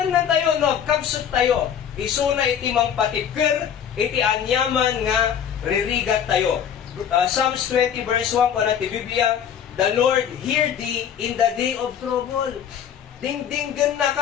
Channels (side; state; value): right; quieter; 8.7 dB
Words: na tayo, no, kabsot tayo. Isuna iti mang patipker, iti anyaman nga ririgat tayo. Psalms 20 verse 1 ko na ti Biblia, the Lord hear thee in the day of trouble. Dingdinggan na